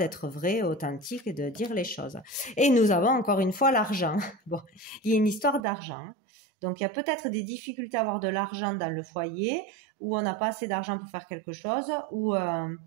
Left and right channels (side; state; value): left; drops out; at 5.6 s